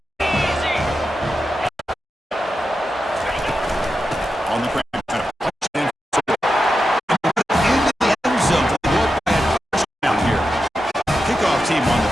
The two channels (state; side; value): normal; both; correlation 0.90